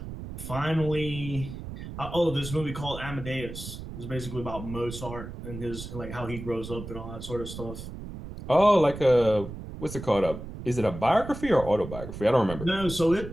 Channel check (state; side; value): noise; right; rumble, 10 dB below the sound